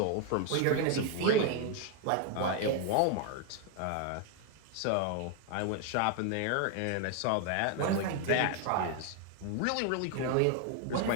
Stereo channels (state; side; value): different; both; correlation 0.01